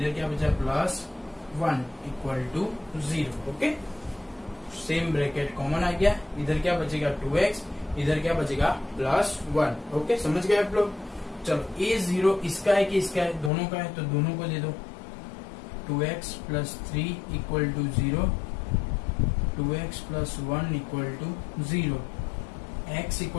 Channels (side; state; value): right; drops out; at 13.5 s